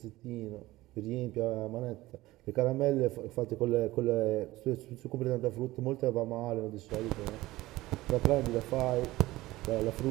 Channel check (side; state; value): left; quieter; 18.0 dB